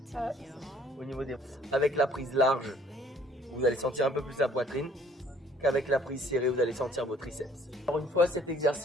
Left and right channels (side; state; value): both; normal; correlation 0.58